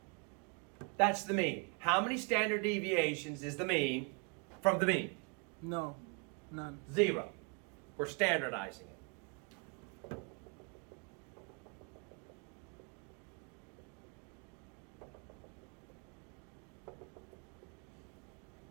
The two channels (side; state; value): left; quieter; 34.8 dB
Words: That's the mean. How many standard deviations is the mean from the mean? No, none. 0. We're standardizing it.